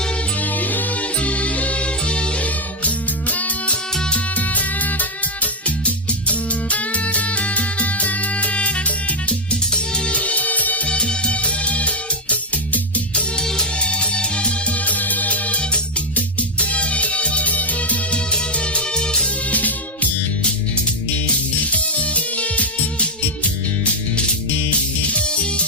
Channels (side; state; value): both; normal; correlation 0.02